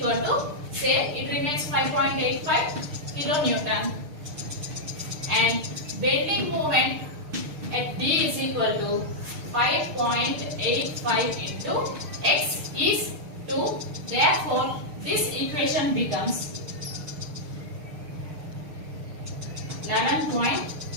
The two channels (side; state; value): left; late; 6.5 ms